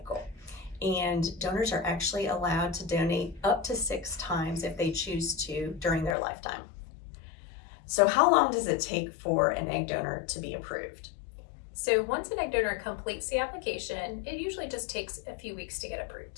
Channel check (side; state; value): right; drops out; at 6.2 s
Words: And donors are actually allowed to donate up to 6 times if they choose to during their lifetime. So how long does it take for an egg donor to be approved? So once an egg donor completes the application, it usually just takes a few weeks to get